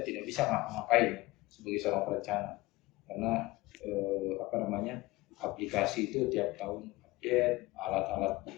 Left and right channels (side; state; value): right; quieter; 20.1 dB